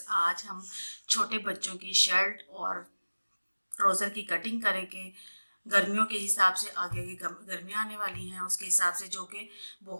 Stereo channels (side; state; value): both; inverted; correlation -1.00